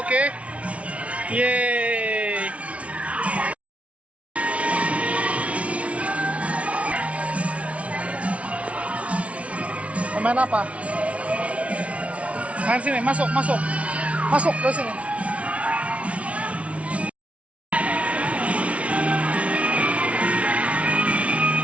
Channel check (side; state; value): left; late; 0.064 ms